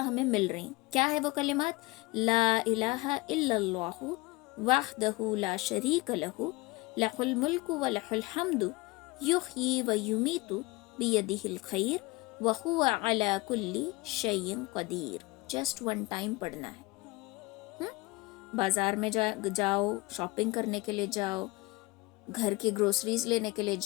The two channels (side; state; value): right; quieter; 22.6 dB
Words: ہمیں مل رہی ہیں. کیا ہے وہ کلمات؟ لا الہ الا اللہ وحدہ لا شریک لہ لہ الملک و لہ الحمد یحیی و یمیت بیدہ الخیر وہو علی کل شیء قدیر. جسٹ 1 ٹائم پڑھنا ہے. بازار میں جاؤ، شاپنگ کرنے کے لیے جاؤ، گھر کی گروسریز لینے کے لیے